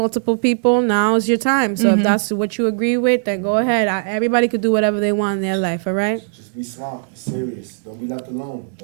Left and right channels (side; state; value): left; silent; digital silence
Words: people, now is your time. So if that's what you agree with, then go ahead. Everybody could do whatever they want in their life, all right? Just be smart. It's serious. Don't be left alone.